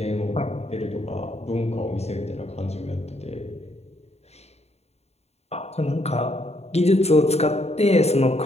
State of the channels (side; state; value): right; late; 0.31 ms